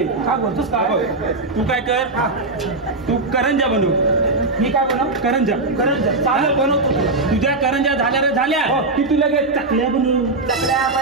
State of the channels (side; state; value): left; quieter; 3.3 dB